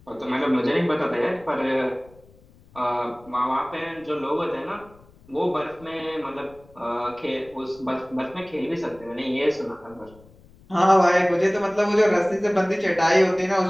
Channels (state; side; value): noise; left; rumble, 26 dB below the sound